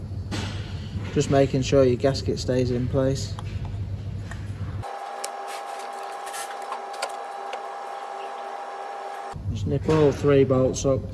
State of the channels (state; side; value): identical; both; correlation 1.00